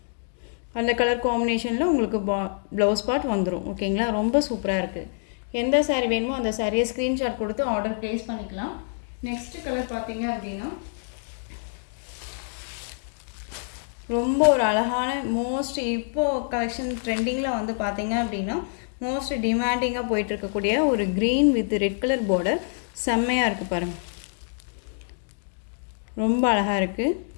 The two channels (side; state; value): right; silent; digital silence